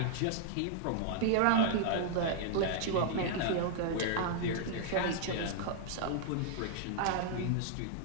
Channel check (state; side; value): different; both; correlation 0.00